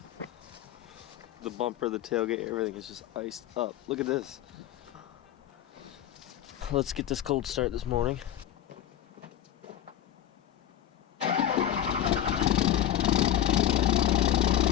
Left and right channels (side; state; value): right; quieter; 11.4 dB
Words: The bumper, the tailgate, everything is just iced up. Look at this. Let's get this cold start this morning.